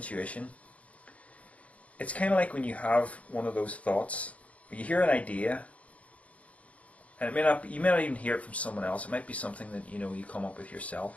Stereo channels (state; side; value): late; right; 0.066 ms